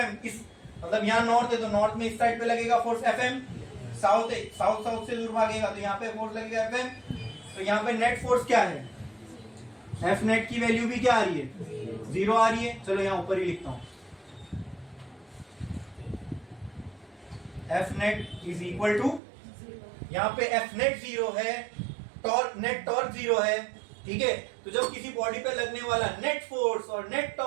इस मतलब यहाँ नॉर्थ है तो नॉर्थ में इस साइड पे लगेगा फोर्स Fm, साउथ है, साउथ साउथ से दूर भागेगा तो यहाँ पे फोर्स लगेगा Fm. तो यहाँ पे नेट फोर्स क्या है, F नेट की वैल्यू भी क्या आ रही है, 0 आ रही है. चलो यहाँ ऊपर ही लिखता हूं, F net is equal to, यहाँ पे F नेट 0 है, टॉर्क नेट टॉर्क 0 है. ठीक है, तो जब किसी बॉडी पे लगने वाला नेट फोर्स और नेट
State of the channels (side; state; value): left; drops out; at 19.2 s